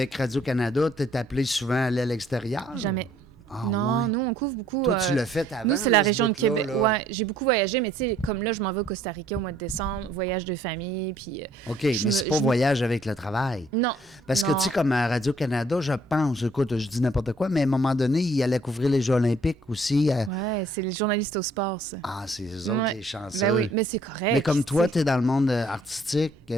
Radio-Canada, tu es appelé souvent à aller à l'extérieur? Jamais. Ah, non, ouais. nous, on couvre beaucoup... Toi, tu l'as fait avant? Nous, c'est la région de Québec. Là. Ouais, j'ai beaucoup voyagé, mais tu sais, comme là, je m'en vais au Costa Rica au mois de décembre, voyage de famille, puis... OK, mais c'est pas voyage avec le travail. Non. Parce que, tu sais, comme à Radio-Canada, je pense, écoute, je dis n'importe quoi, mais à un moment donné, il allait couvrir les Jeux olympiques aussi. Ouais, c'est les journalistes au sport, ça. Ah, c'est eux autres, les chanceux. Ben oui, mais c'est correct. Mais comme toi, tu es dans le monde artistique,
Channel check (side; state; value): both; normal; correlation 0.62